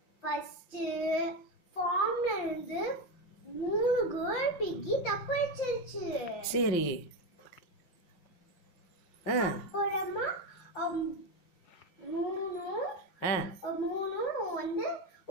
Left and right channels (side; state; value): right; late; 5.9 ms